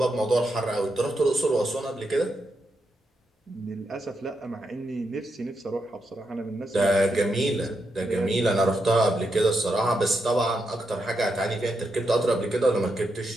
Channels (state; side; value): normal; both; correlation 0.83